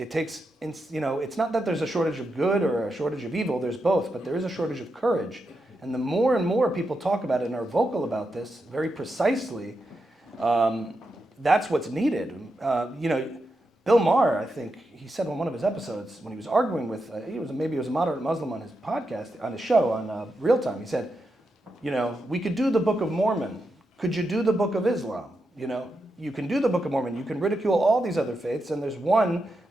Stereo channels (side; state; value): both; normal; correlation 0.86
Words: know, it's not that there's a shortage of good or a shortage of evil, there's both, but there is a shortage of courage. And the more and more people talk about it and are vocal about this very precisely, that's what's needed. You know, Bill Maher, I think, he said on one of his episodes when he was arguing with, maybe he was a moderate Muslim on his podcast, on his show, on Real Time, he said, you know, we could do the Book of Mormon. Could you do the Book of Islam? You know, you can do the Book of Mormon. You can ridicule all these other faiths, and there's one